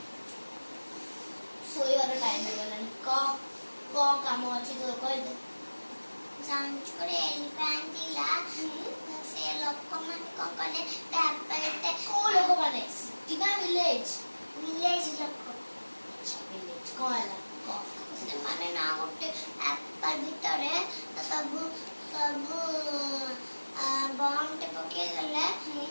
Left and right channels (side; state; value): both; inverted; correlation -1.00